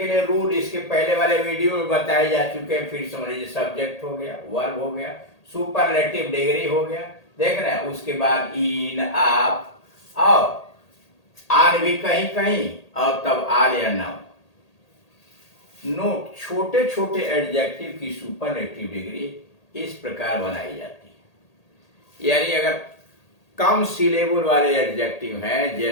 लिए रूल इसके पहले वाले वीडियो में बताए जा चुके हैं, फिर समझ लीजिए। सब्जेक्ट हो गया, वर्ब हो गया, सुपरलेटिव डिग्री हो गया, देख रहे हैं। उसके बाद इन, आप, और आर भी कहीं कहीं, और तब आर या नाउन। नोट, छोटे छोटे एडजेक्टिव की सुपरलेटिव डिग्री इस प्रकार बनाई जाती है। यानी अगर कम सिलेबल वाले एडजेक्टिव हैं,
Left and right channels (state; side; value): late; right; 1.8 ms